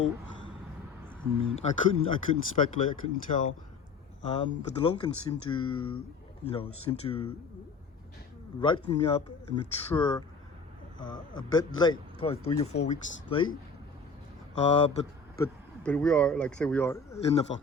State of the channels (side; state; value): right; quieter; 4.0 dB